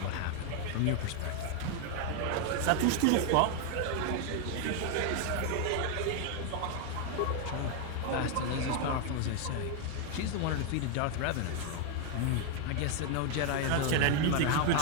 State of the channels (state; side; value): different; both; correlation 0.00